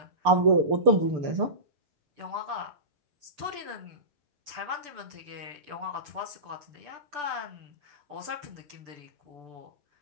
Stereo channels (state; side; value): late; left; 6.8 ms